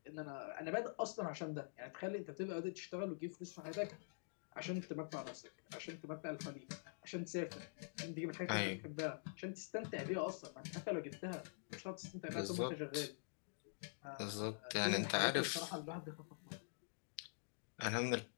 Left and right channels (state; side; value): silent; right; digital silence